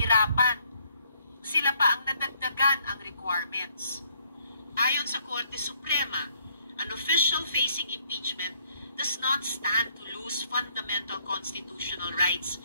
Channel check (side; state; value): both; inverted; correlation -0.67